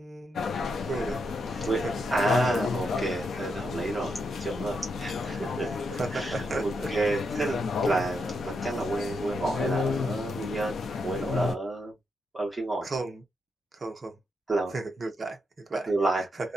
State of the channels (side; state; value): both; normal; correlation 0.82